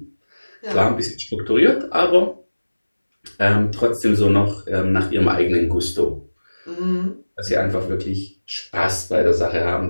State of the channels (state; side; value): inverted; both; correlation -1.00